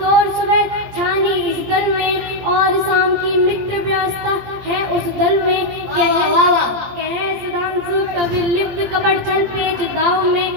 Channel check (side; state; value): left; late; 18 ms